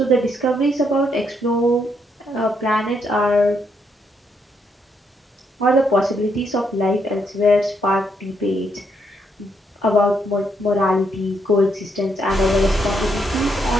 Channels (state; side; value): normal; both; correlation 0.76